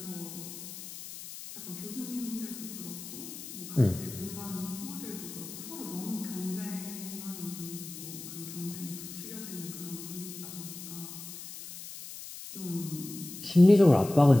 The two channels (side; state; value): left; noise; hiss, 12 dB below the sound